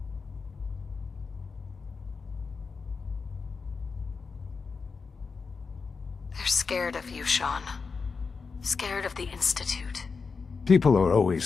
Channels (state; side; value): quieter; right; 4.9 dB